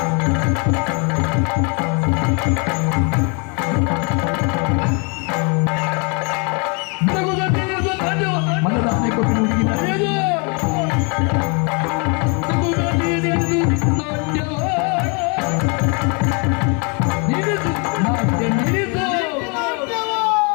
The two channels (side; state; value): right; quieter; 34.2 dB